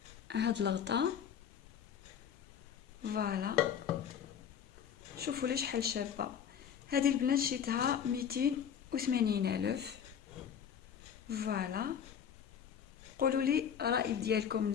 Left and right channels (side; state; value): right; quieter; 8.3 dB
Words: هاد الغطاء. فوالا شوفوا لي شحال شابه. هذه البنات شريتها 280,000. فوالا. قولوا لي الراي ديالكم